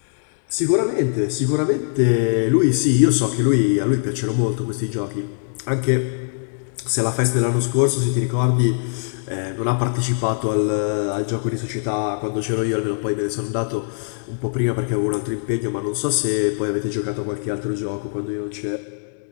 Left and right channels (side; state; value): right; silent; digital silence